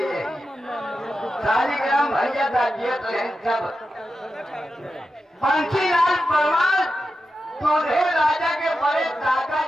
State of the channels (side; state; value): both; normal; correlation 0.90